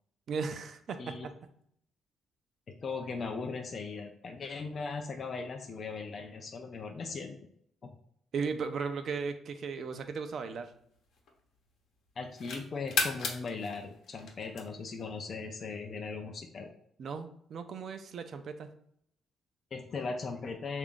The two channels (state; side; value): normal; both; correlation 0.73